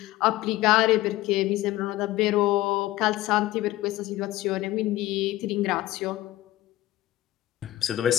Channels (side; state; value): right; quieter; 16.3 dB